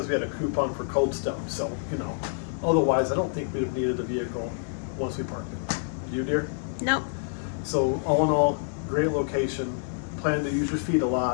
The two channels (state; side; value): silent; right; digital silence